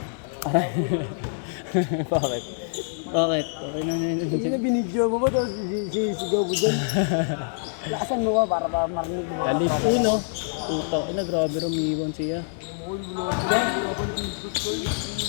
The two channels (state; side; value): silent; right; digital silence